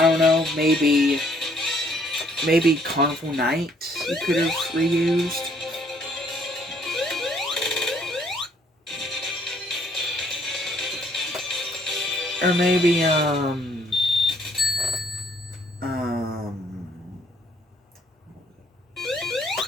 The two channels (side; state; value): both; normal; correlation 0.65